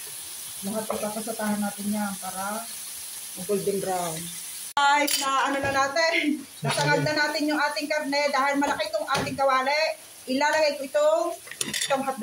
lahat ipapasatahan natin yan para golden brown. Guys, na ano na natin. Nasangad na natin yung ating karne dahil malaki itong ating kawali. Ilalagay ko itong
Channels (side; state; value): both; identical; correlation 1.00